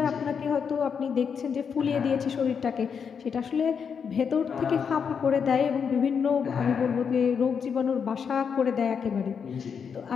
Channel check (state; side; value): quieter; right; 6.6 dB